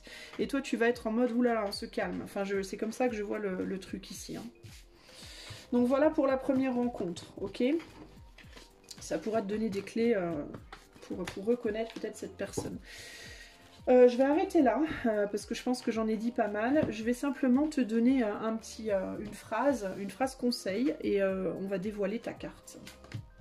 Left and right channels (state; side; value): identical; both; correlation 1.00